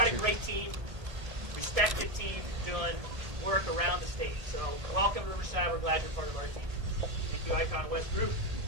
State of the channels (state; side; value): late; left; 1.6 ms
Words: a great team, respected team doing work around the state. So welcome to Riverside. We're glad you're part of our team. Thank you, Icon West Group.